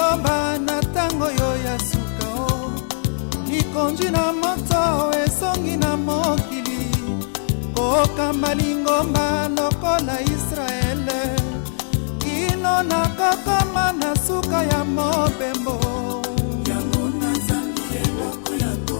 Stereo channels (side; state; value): right; silent; digital silence